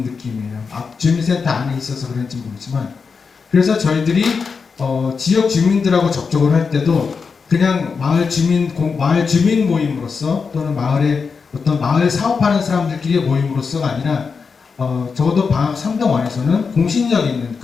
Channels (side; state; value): right; quieter; 5.3 dB